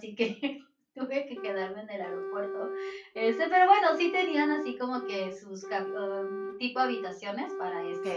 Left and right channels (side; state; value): both; identical; correlation 1.00